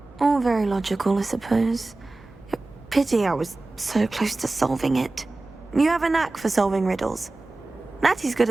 All very logical, I suppose. Pity I was so close to solving it. You have a knack for solving riddles. Natty's good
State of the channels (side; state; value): left; quieter; 3.1 dB